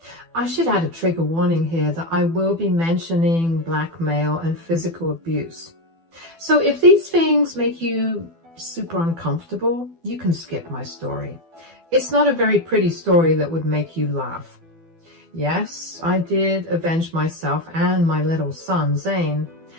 I should add a trigger warning here that I will be mentioning blackmail and physical abuse. So if these things make you super uncomfortable, you can skip my story. It's not a very pretty story that would make you laugh. Yes, I did avenge myself and my little son, Zane,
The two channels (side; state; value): left; late; 12 ms